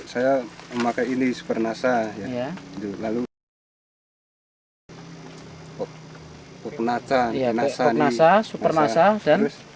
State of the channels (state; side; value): identical; both; correlation 1.00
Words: saya memakai ini Super NASA ya. Ya. Lalu Popnasa, Iya, NASA, NASA, Super NASA, dan terus